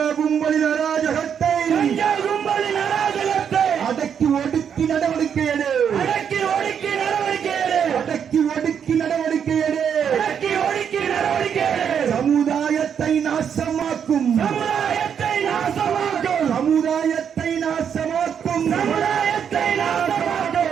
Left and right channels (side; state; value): left; quieter; 7.8 dB